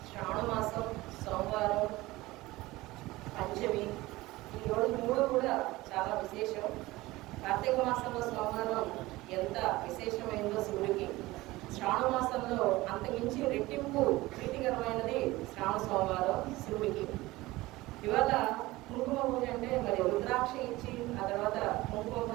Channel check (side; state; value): left; quieter; 19.2 dB